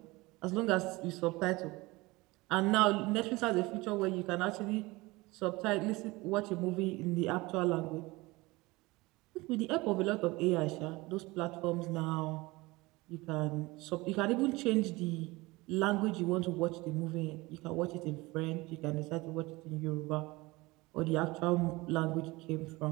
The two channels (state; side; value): quieter; left; 22.0 dB